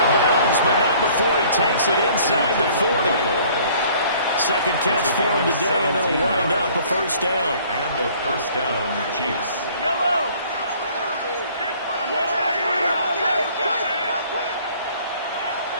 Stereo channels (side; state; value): both; inverted; correlation -0.55